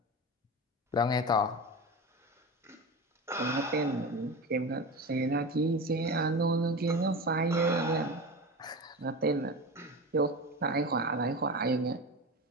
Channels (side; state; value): both; normal; correlation 0.27